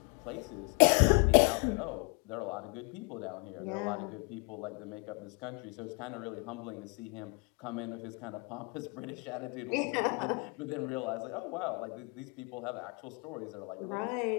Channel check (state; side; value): quieter; right; 31.7 dB